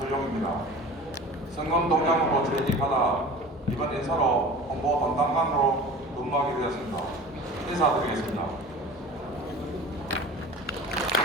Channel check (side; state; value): both; normal; correlation 0.38